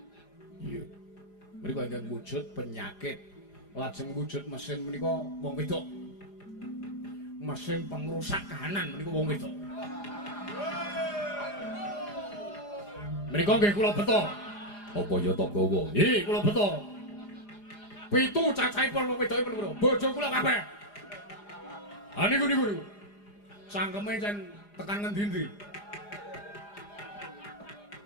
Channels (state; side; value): late; right; 4.9 ms